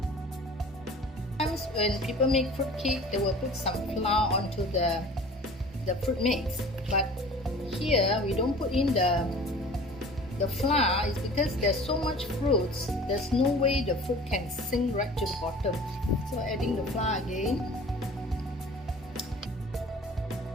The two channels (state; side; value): normal; both; correlation 0.44